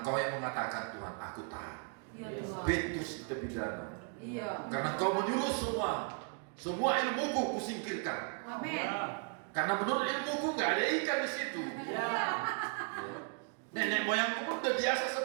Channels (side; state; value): left; quieter; 39.8 dB